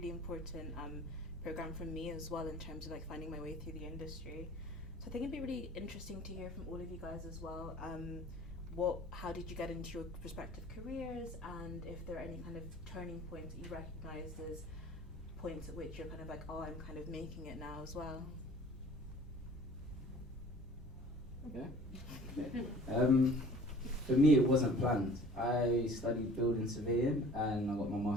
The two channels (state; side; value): normal; both; correlation 0.48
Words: important program for me as well in terms of like finding my way through the industry. So I think it'd be really interesting to hear from all of you guys as well. How did you get into your respective careers, and if there are any kind of turning points that you recognise as points at which you're kind of like, oh, I'm kind of making it now as well. Okay. For me, it wasn't planned. I studied building surveying and I got my